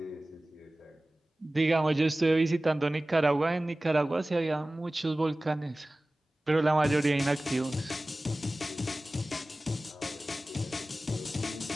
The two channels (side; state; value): both; normal; correlation 0.97